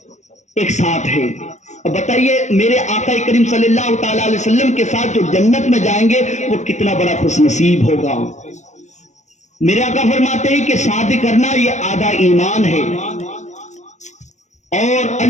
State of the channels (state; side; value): late; right; 0.34 ms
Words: ایک ساتھ ہے. اب بتائیے میرے آقا کریم صلی اللہ تعالی علیہ وسلم کے ساتھ جو جنت میں جائیں گے وہ کتنا بڑا خوش نصیب ہوگا. میرے آقا فرماتے ہیں کہ شادی کرنا یہ آدھا ایمان ہے، اور